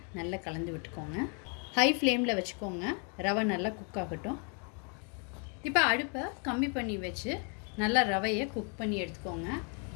நல்லா கலந்து விட்டுக்கோங்க. ஹை ஃப்ளேமில் வச்சுக்கோங்க. ரவை நல்லா குக் ஆகட்டும். இப்போ அடுப்பை கம்மி பண்ணி வச்சு நல்லா ரவையை குக் பண்ணி எடுத்துக்கோங்க.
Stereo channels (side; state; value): right; quieter; 39.3 dB